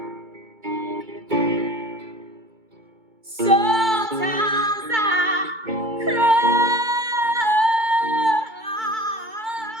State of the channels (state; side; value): late; left; 2.2 ms